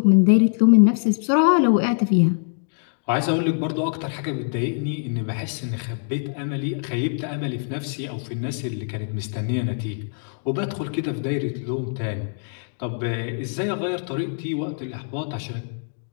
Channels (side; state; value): right; silent; digital silence